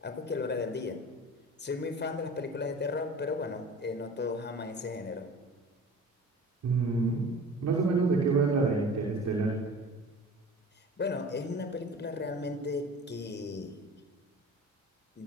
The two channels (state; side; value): normal; both; correlation 0.40